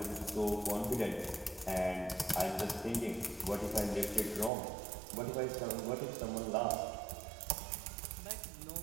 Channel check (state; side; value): drops out; left; at 4.5 s